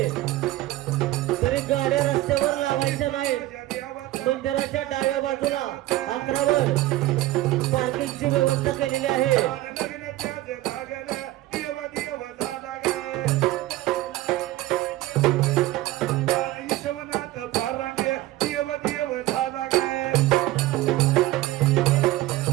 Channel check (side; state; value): left; quieter; 16.4 dB